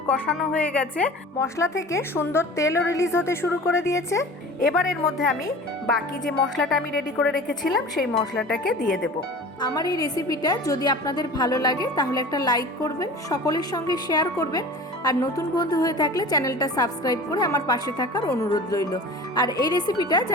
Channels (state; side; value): normal; both; correlation 0.38